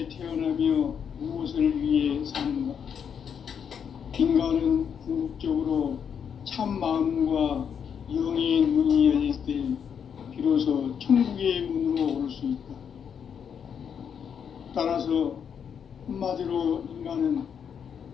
태어나며 무엇을 위해 사는가? 인간은 궁극적으로 참 마음과 영의 문이 열릴 때 비로소 천국의 문으로 올 수 있다. 따라서 한마디로 인간은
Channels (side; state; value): right; quieter; 7.6 dB